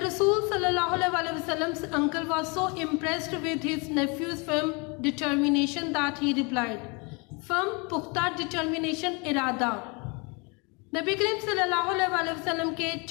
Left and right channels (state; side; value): quieter; right; 30.6 dB